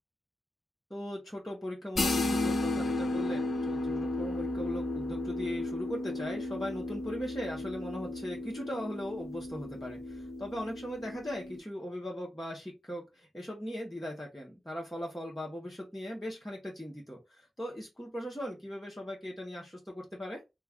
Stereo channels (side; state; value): both; normal; correlation 0.86